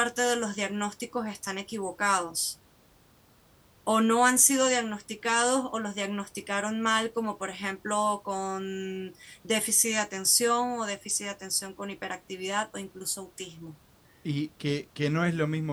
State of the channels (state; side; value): identical; both; correlation 1.00